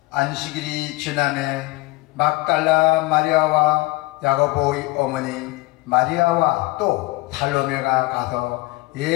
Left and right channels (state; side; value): quieter; right; 21.4 dB